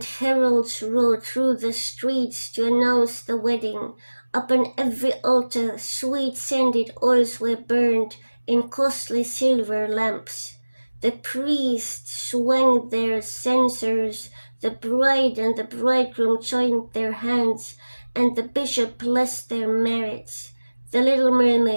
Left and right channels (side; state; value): both; inverted; correlation -1.00